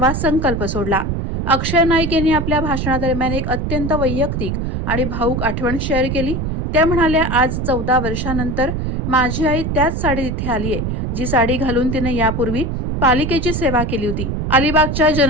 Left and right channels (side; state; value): right; noise; rumble, 2 dB below the sound